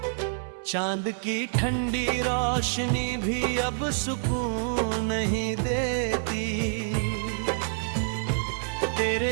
चांद की ठंडी रोशनी भी अब सुकून नहीं देती, तेरे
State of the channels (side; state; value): left; silent; 60 dB below the other